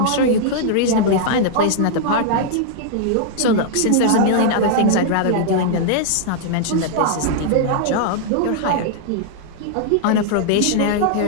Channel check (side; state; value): both; different; correlation -0.01